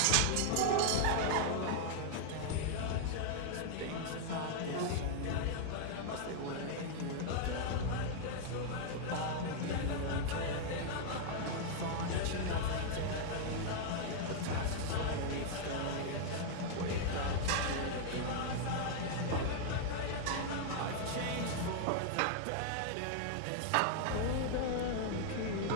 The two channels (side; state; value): both; different; correlation -0.01